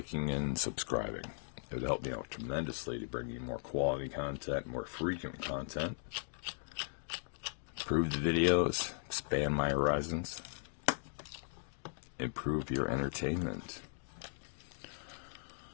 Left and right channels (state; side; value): silent; right; digital silence